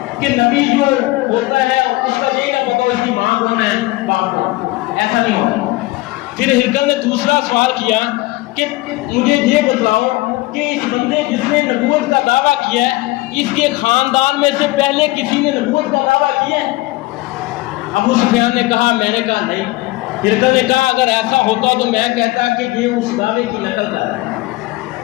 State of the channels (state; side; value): quieter; right; 20.1 dB